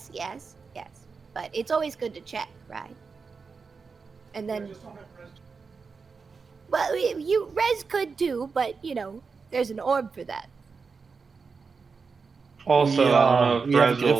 But it's always good to check, right? And then, well, you Rez could too, but there's an orb for that. Also, I don't know we if have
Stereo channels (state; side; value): quieter; left; 5.0 dB